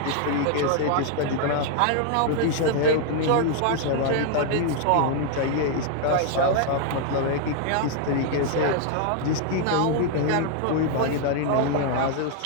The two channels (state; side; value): different; both; correlation 0.00